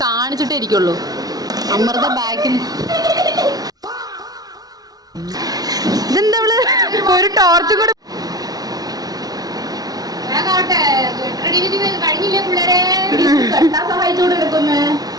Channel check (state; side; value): late; left; 0.19 ms